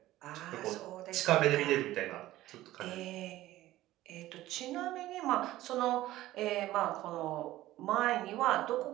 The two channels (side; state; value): left; quieter; 15.7 dB